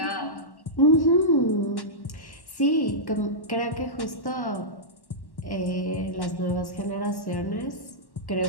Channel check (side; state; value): right; late; 1.1 ms